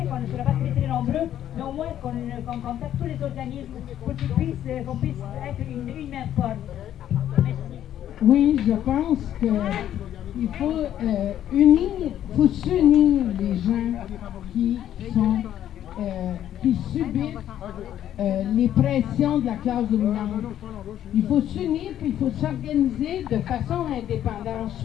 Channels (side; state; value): right; quieter; 11.1 dB